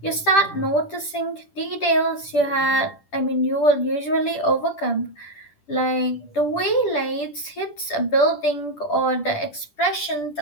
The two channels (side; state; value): right; late; 10 ms